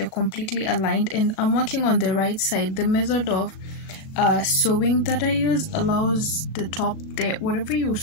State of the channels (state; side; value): late; right; 38 ms